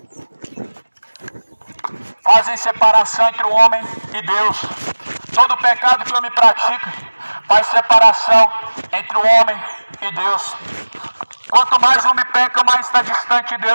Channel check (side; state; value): both; inverted; correlation -1.00